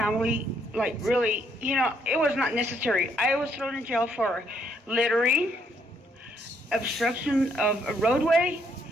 like really, it was not necessary. I was thrown in jail for littering, obstruction of a roadway,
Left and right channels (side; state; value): both; normal; correlation 0.71